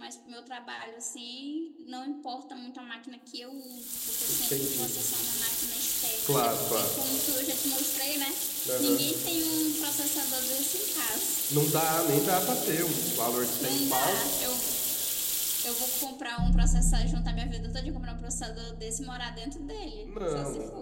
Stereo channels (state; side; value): identical; both; correlation 1.00